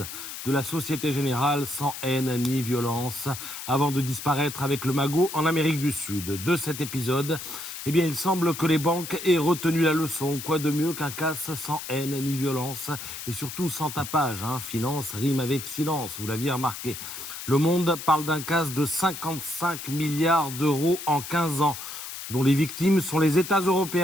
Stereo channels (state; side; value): noise; left; hiss, 9 dB below the sound